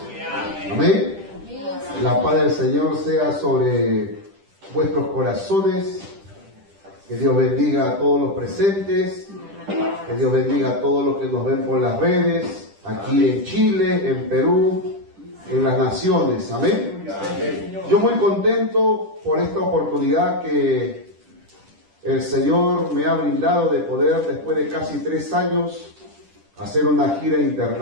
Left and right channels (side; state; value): left; late; 10 ms